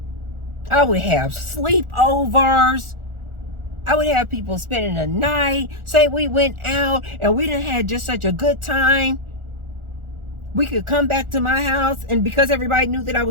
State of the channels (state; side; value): late; left; 1.4 ms